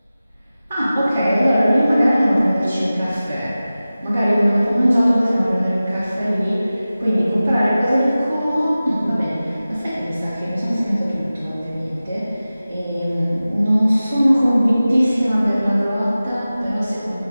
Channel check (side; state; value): both; inverted; correlation -0.96